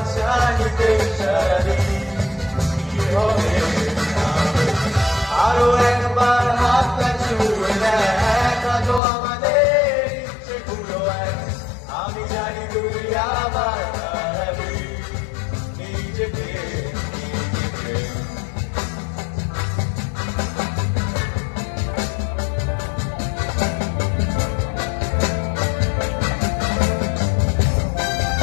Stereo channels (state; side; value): drops out; right; at 9.0 s